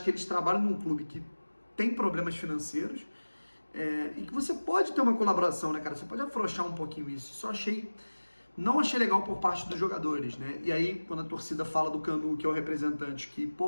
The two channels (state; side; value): inverted; both; correlation -1.00